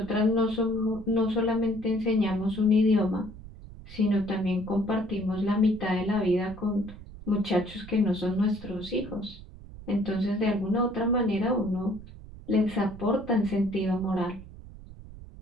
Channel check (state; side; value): noise; right; rumble, 16 dB below the sound